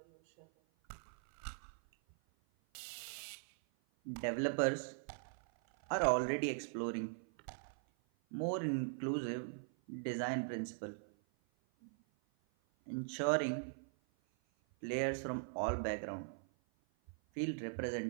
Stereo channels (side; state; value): left; silent; 51 dB below the other